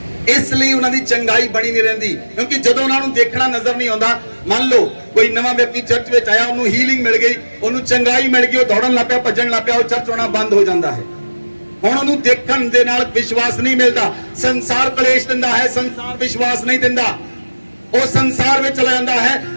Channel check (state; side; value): inverted; both; correlation -1.00